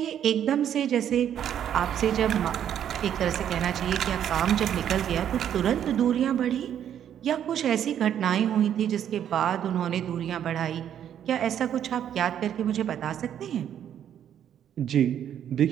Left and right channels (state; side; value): quieter; left; 9.8 dB